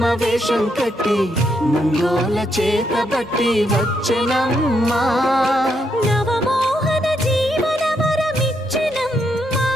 వేషం కట్టి ముంగోల చేతబట్టి వచ్చెనమ్మా నవమోహన జీవన వరమిచ్చెనమ్మా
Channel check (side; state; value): both; normal; correlation 0.78